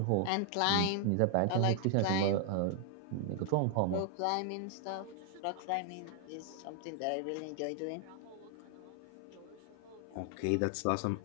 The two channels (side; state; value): both; different; correlation 0.00